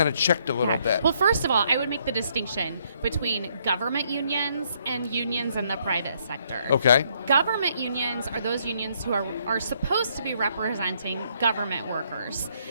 of checked a little bit? Well, first of all, I would make the distinction between government unions and unions in the private sector. Okay. Government unions are those unions who are supposed to be representing government workers.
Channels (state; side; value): inverted; both; correlation -0.70